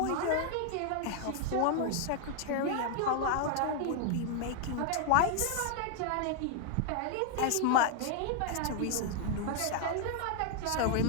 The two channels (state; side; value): different; both; correlation 0.00